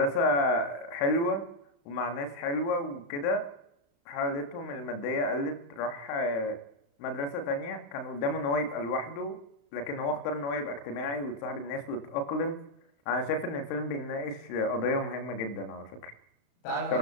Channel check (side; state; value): right; late; 35 ms